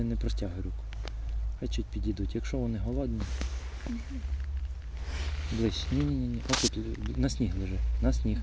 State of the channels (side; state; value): both; identical; correlation 1.00